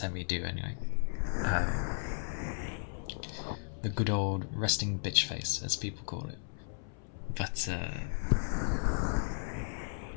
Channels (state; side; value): silent; right; 55 dB below the other